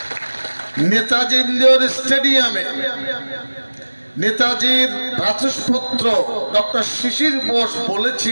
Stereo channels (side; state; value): both; inverted; correlation -1.00